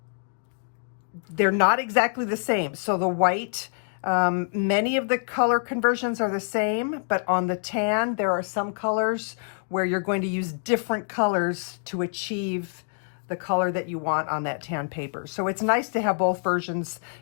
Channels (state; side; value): silent; right; 61 dB below the other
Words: they're not exactly the same. So the white, many of the color conversions are the same, but on the tan, there are some colors where you're going to use different colors to achieve the color that you want on that tan paper. So it's nice to have both versions